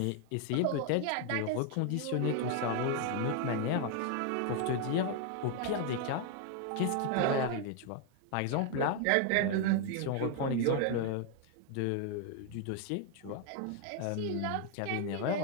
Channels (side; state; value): both; different; correlation 0.00